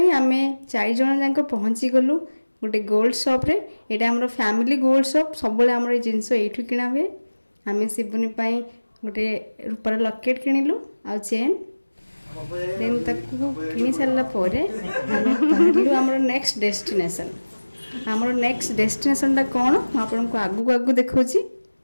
आम 4 जन जाक पहुँची गलु गोटे गोल्ड शॉप रे। यहाँ आम फैमिली गोल्ड शॉप सब आम जिनस यू किना हुए। आम शिबुनी गोटे रूपार लकेट किणिलु आ चेन। देन ताकू किणी सारापर आम बाहरलु आमर नेक्स्ट डेस्टिनेशन। आमर नेक्स्ट डेस्टिनेशनटा कौन आपको आगू आगू देखौची।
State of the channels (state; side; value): inverted; both; correlation -1.00